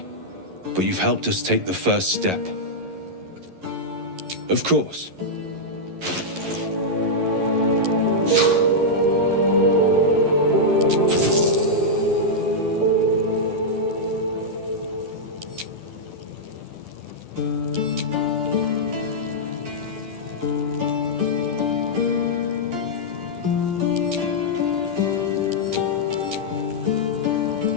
but you've helped us take the first step. Of course.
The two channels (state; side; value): late; left; 11 ms